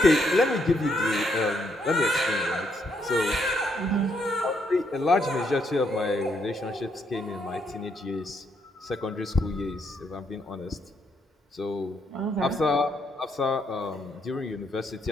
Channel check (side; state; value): both; normal; correlation 0.75